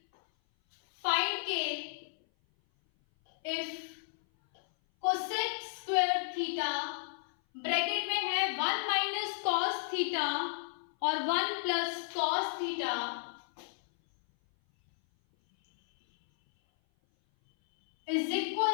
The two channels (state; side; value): silent; right; 56 dB below the other